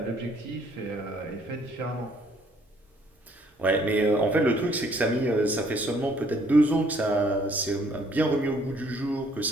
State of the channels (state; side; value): normal; both; correlation 0.63